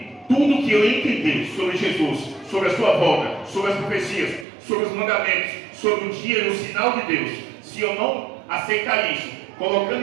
tudo que eu entendi sobre Jesus, sobre a sua volta, sobre as profecias, sobre os mandamentos, sobre o dia e o sinal de Deus, se eu não aceitar isso, colocando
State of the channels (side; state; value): left; drops out; at 4.5 s